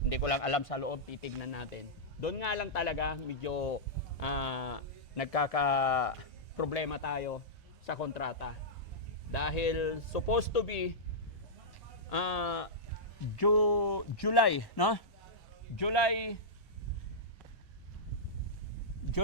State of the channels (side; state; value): both; normal; correlation -0.11